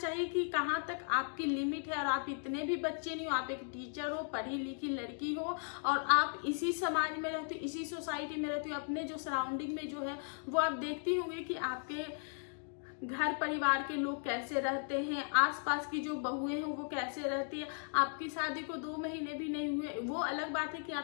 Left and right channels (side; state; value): right; silent; 53 dB below the other